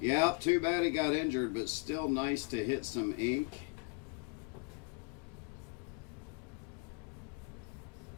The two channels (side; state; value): right; quieter; 30.7 dB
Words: Yeah, too bad he got injured, but still nice to hit some ink.